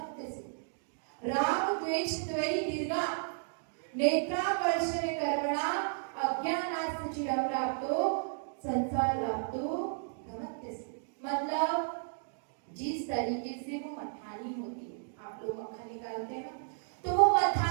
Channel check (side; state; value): left; silent; digital silence